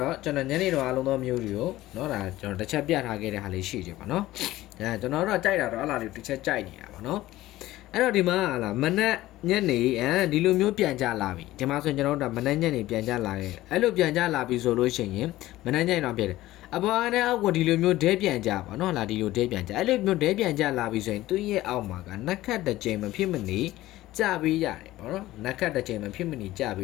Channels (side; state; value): right; quieter; 16.2 dB